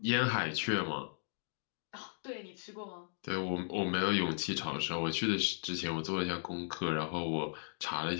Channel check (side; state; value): right; silent; digital silence